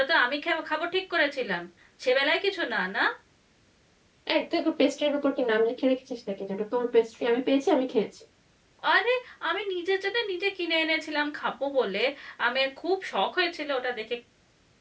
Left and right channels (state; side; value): identical; both; correlation 1.00